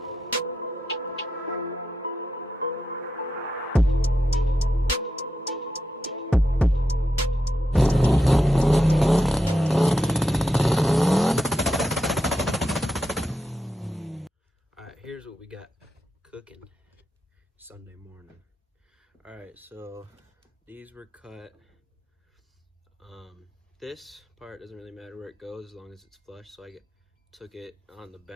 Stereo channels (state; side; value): normal; both; correlation 0.86